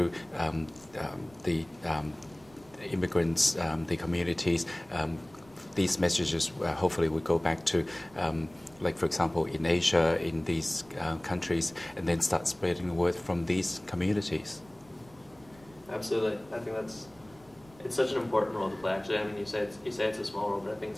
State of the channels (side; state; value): right; noise; rumble, 26 dB below the sound